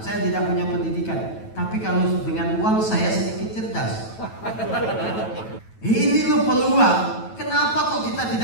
Saya tidak punya pendidikan. Tapi kalau dengan uang saya sedikit cerdas. Ini loh peluang. Kenapa kok kita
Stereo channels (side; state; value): right; late; 9.1 ms